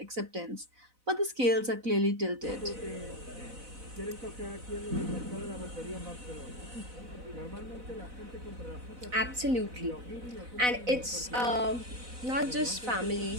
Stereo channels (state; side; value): late; left; 4.0 ms